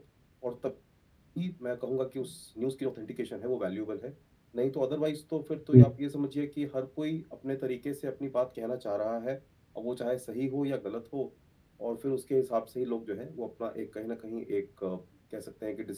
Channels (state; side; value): identical; both; correlation 1.00